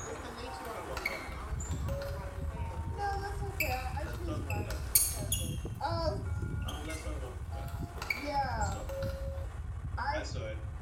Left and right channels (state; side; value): identical; both; correlation 1.00